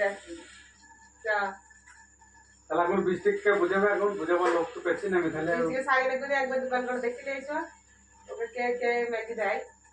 তাহলে এখন বৃষ্টিকে বুঝাবে, এখন বুঝাবার লোক তো পেয়েছি না আমি। তাহলে একবার দোকান করে দেখে নিয়েছো, ওকে কে ম্যাগি দেয়?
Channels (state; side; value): identical; both; correlation 1.00